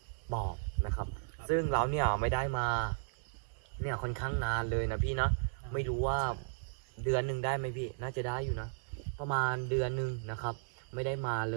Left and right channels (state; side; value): silent; left; digital silence